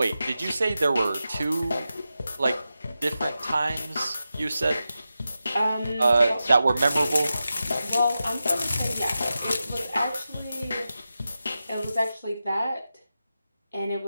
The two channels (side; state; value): both; inverted; correlation -0.92